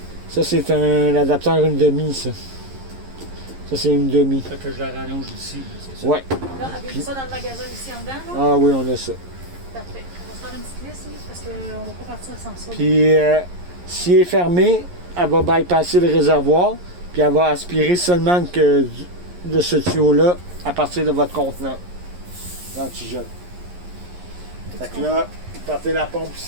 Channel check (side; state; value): left; late; 11 ms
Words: Ça, c'est un adaptateur une demi, ça. Ça, c'est une demi. Fait que je la rallonge ici, c'est ça. Ouais. Là, avez-vous ça dans le magasin ici en dedans, là? Ah oui, on a ça. Parfait. On va se faire une petite liste, oui, parce qu'on ne va pas partir sans ça. Puis, si elle est fermée, elle va bypasser le réservoir, puis elle va aspirer seulement de ce tuyau-là à partir de votre contenant d'antigel. Fait que là, partez la pompe